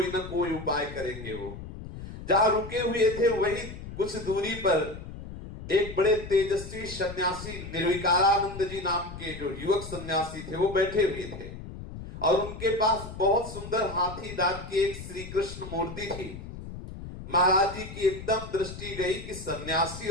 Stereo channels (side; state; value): left; noise; rumble, 11 dB below the sound